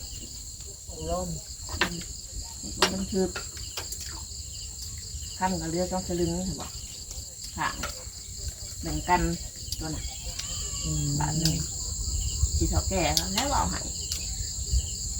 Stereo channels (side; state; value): both; identical; correlation 1.00